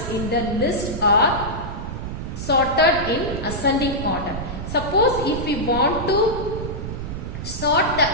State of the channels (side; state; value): right; noise; rumble, 6 dB below the sound